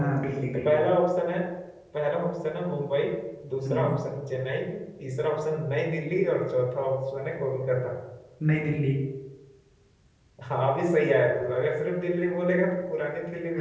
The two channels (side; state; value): both; identical; correlation 1.00